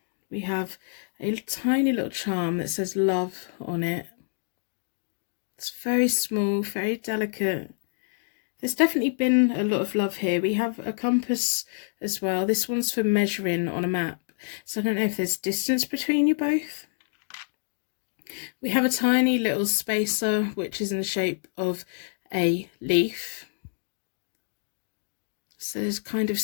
We have a tiny little charm that says love on it. It's very small, very delicate. There's definitely been a lot of love here. We have a compass as well. This one's for measuring on a map. So I don't know if there's distance between you both. We have a tiny little spacer, which is in the shape of a leaf. So there's kind of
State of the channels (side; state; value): right; silent; digital silence